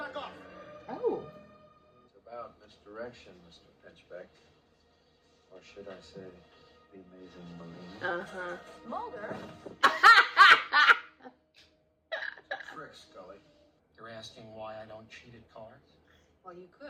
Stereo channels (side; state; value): both; identical; correlation 1.00